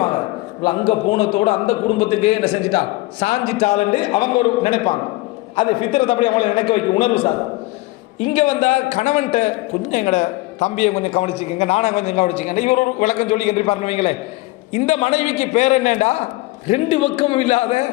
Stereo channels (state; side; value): quieter; right; 20.9 dB